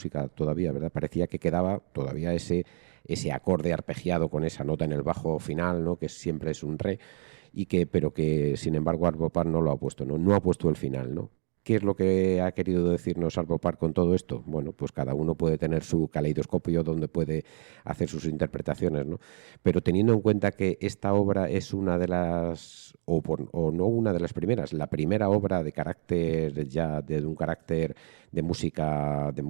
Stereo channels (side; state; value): left; silent; digital silence